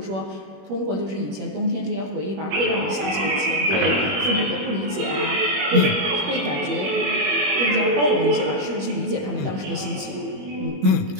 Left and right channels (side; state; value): left; late; 21 ms